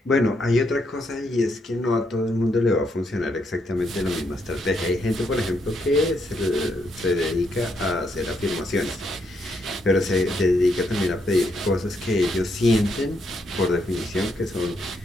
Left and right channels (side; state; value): both; normal; correlation 0.77